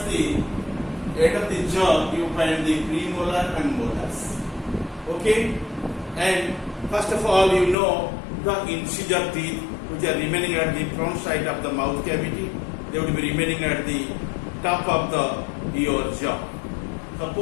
the end of the jaw, you find the premolar and molars. Okay, and first of all, you know the incisor teeth which are remaining at the front side of the mouth cavity. They will be remaining at the top of your jaw.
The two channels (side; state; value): right; drops out; at 7.8 s